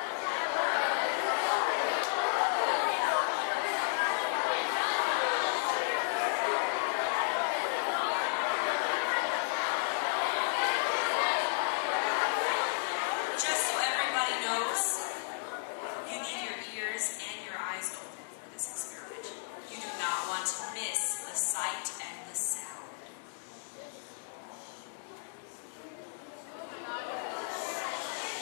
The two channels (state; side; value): silent; right; digital silence